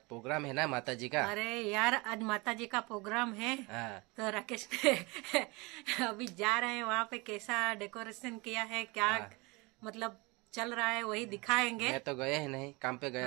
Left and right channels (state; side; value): quieter; left; 25.7 dB